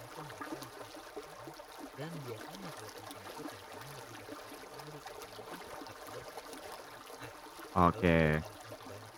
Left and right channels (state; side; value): identical; both; correlation 1.00